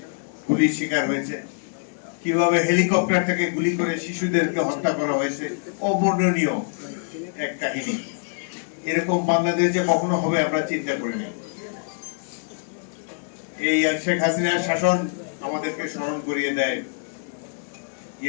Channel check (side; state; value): right; silent; digital silence